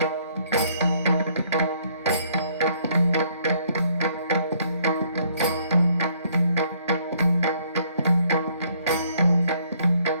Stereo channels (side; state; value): both; inverted; correlation -0.66